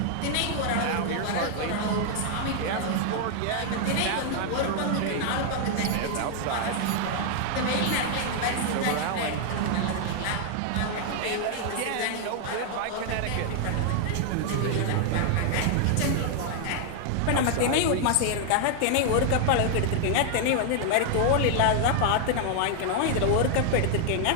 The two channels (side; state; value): both; different; correlation 0.00